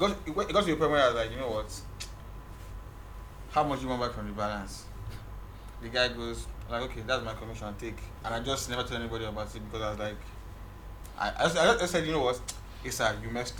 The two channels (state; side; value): identical; both; correlation 1.00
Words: to the point where I was like, you know what? How much do you want back from the balance? The guy goes, like, okay, that's my commission, take. And I just never told anybody about it because I was like, I said, you know what? Asa, you messed